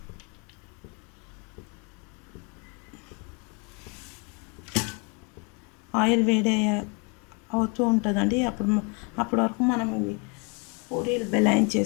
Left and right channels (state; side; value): quieter; right; 33.7 dB